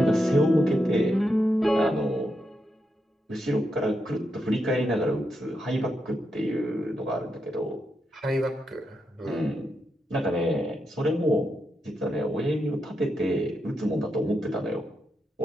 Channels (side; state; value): both; normal; correlation 0.84